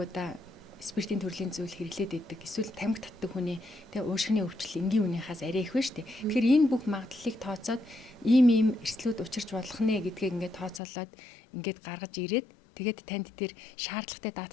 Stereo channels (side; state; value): right; drops out; at 10.8 s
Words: спиртийн төрлийн зүйл хэрэглээд идэг эсвэл тамхи татдаг хүний тэгээ уушгины өвчл энгийн үнийхээс арай их байна шүү дээ. Тэгэхээр энэ бүх магадлалыг тооцоод ийм эрсдлүүд учирч болох нэ гэдгийг ингээд тооцоолоод ингээд гаргаж ирээд тэгээд танд тэр шаардлагатай